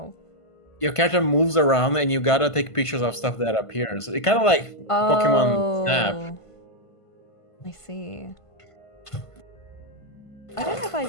Your character moves around and you gotta take pictures of stuff that appears. It kind of like Pokemon Snap. Oh, I see. I don't know if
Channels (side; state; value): right; late; 1.5 ms